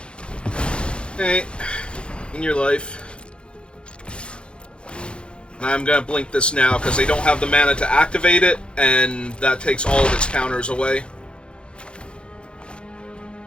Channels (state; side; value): late; right; 0.056 ms